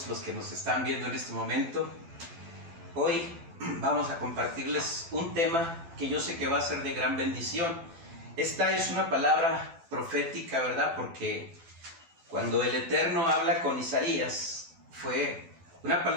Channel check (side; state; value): left; late; 12 ms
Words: los que nos están viendo en este momento. Hoy vamos a compartirles un tema que yo sé que va a ser de gran bendición. Esta es una palabra profética, ¿verdad? Porque cuando el Eterno habla con Isaías, fue una